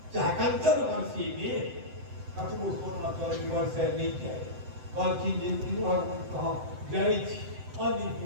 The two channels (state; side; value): late; left; 7.8 ms